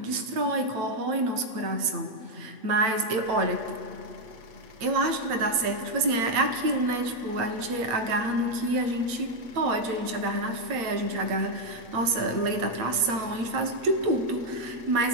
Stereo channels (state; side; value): late; left; 8.3 ms